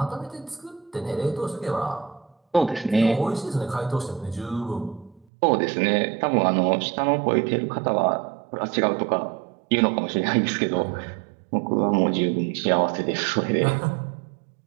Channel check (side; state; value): left; drops out; at 5.2 s